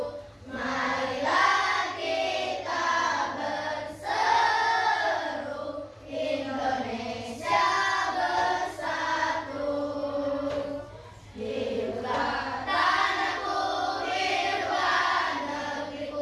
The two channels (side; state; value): both; identical; correlation 1.00